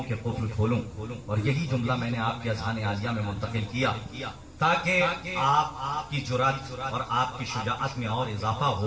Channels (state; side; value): identical; both; correlation 1.00